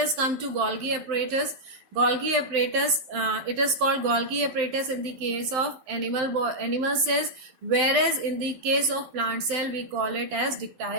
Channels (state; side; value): late; left; 12 ms